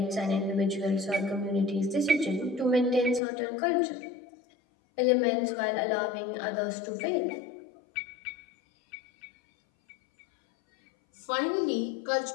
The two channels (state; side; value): drops out; right; at 3.2 s